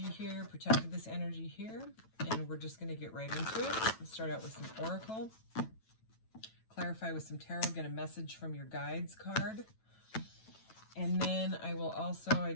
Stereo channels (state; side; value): late; right; 9.1 ms